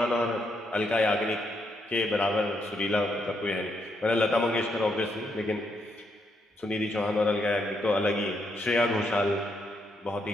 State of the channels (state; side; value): normal; both; correlation 0.77